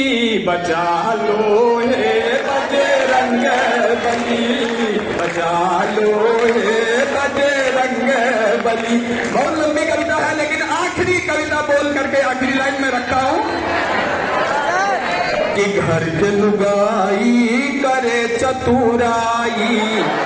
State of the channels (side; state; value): both; identical; correlation 1.00